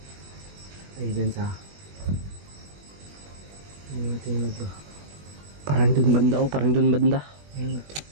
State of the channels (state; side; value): late; left; 20 ms